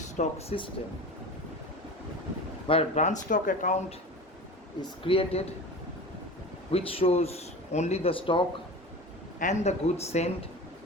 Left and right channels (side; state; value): both; normal; correlation 0.34